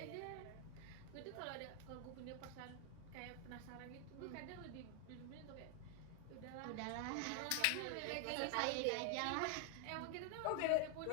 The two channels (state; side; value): different; both; correlation 0.00